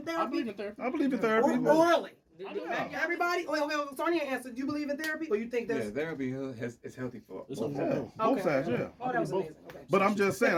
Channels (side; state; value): both; identical; correlation 1.00